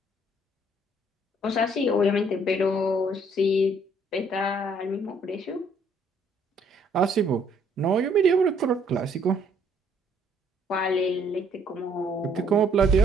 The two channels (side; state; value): both; normal; correlation 0.64